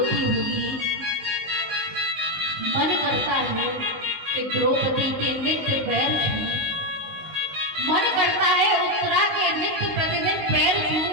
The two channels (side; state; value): left; late; 19 ms